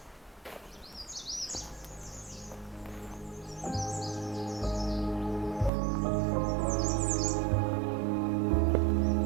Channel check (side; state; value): left; drops out; at 5.7 s